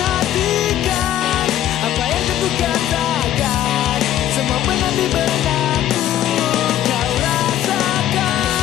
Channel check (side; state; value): right; quieter; 12.1 dB